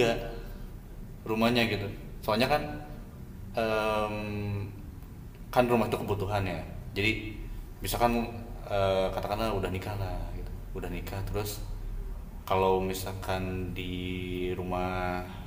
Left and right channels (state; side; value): identical; both; correlation 1.00